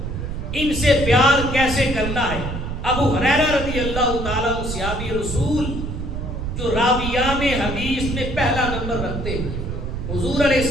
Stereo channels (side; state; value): right; noise; rumble, 5 dB below the sound